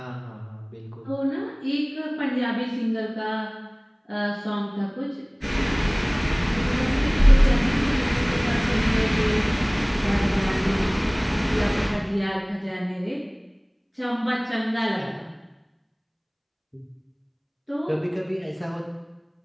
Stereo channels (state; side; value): identical; both; correlation 1.00